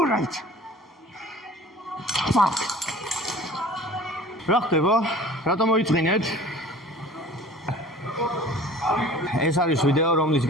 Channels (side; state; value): both; normal; correlation 0.45